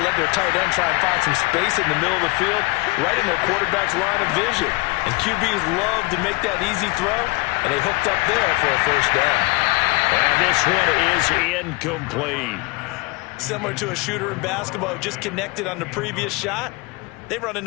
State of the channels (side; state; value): right; quieter; 24.7 dB